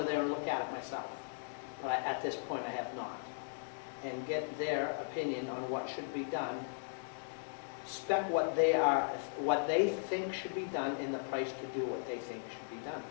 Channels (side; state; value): right; silent; digital silence